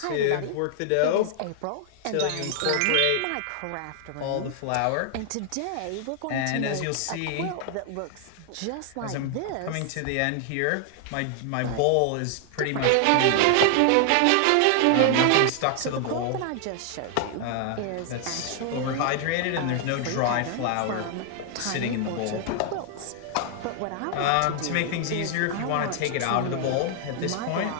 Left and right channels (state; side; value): different; both; correlation 0.00